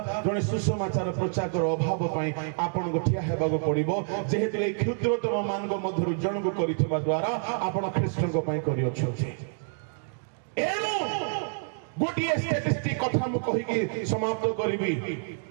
जने सुसमाचार प्रचार अभाव पाई आपन को ठिया हेबाको पड़िबो। जेहेतु ए क्षुद्रतम मानक मध्यरु जन को करिथिबा द्वारा आपन ख्रीष्ट को पाई करियो छथि। एनु गोटिए स्टैटिस्टिक कथा मु कहि कि समाप्त करिबी।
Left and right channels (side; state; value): left; silent; digital silence